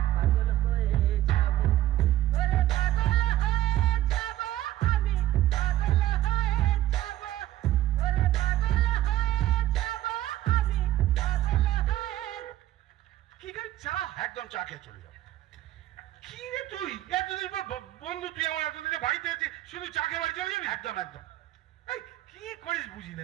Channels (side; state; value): left; quieter; 13.9 dB